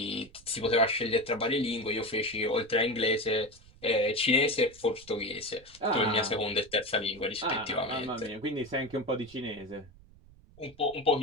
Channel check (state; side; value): noise; right; rumble, 24 dB below the sound